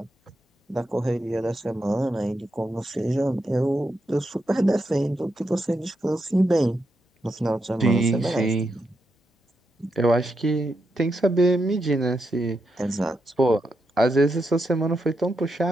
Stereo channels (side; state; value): both; normal; correlation 0.84